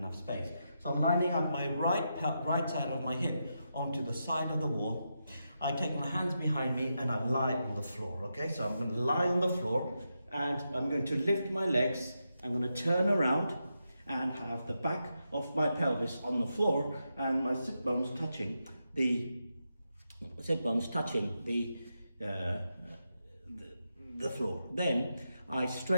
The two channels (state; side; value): inverted; both; correlation -0.86